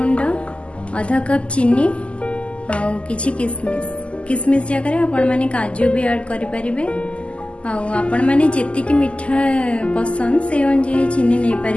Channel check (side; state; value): right; late; 0.056 ms